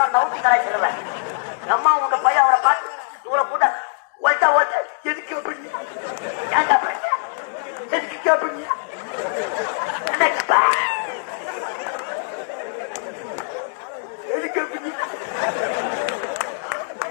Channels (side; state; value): right; silent; digital silence